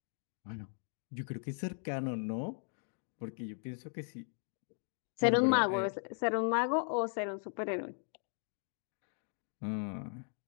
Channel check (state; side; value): silent; right; 53 dB below the other